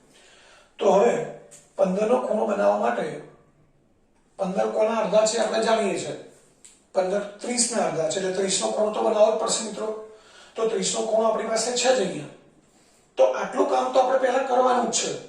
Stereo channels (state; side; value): identical; both; correlation 1.00